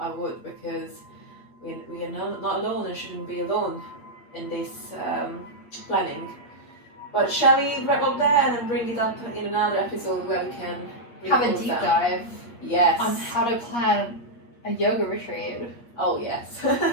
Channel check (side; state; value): right; late; 8.5 ms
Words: would, because we are not alone and shouldn't be alone in this planning. But shall we wrap up there and then bring it up in another episode where we can have a deep dive. Yes. On how to plan a yoga retreat. Oh yes,